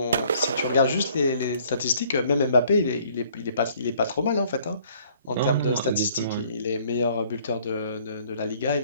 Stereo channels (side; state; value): both; inverted; correlation -0.59